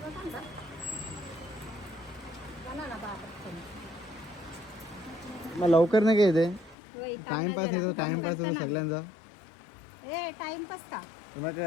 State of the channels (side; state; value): right; drops out; at 6.8 s